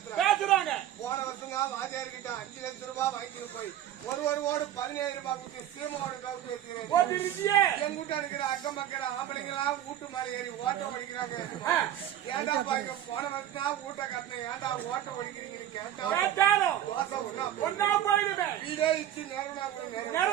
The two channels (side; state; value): left; quieter; 11.6 dB